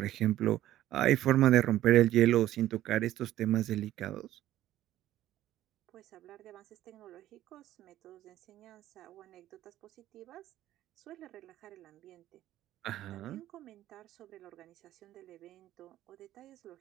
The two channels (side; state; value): left; quieter; 13.6 dB